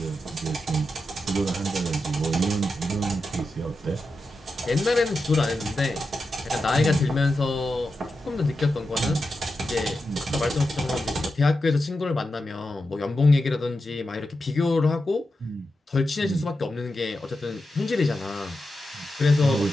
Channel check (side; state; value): both; normal; correlation 0.89